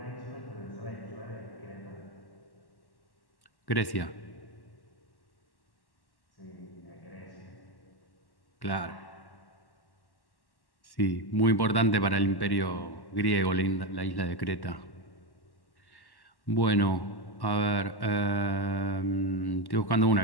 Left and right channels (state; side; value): late; right; 1.1 ms